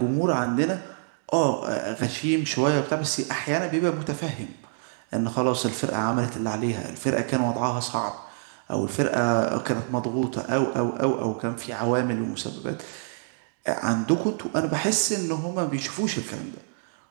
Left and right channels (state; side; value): silent; left; digital silence